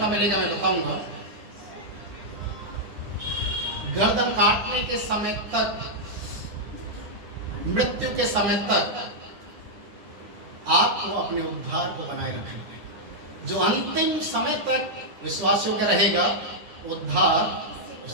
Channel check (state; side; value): late; left; 10 ms